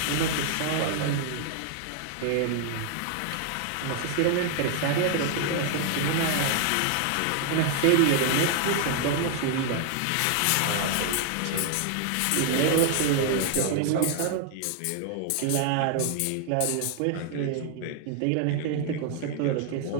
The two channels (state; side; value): different; both; correlation 0.00